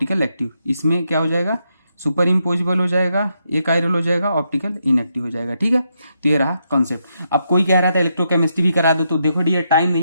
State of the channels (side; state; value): both; inverted; correlation -0.81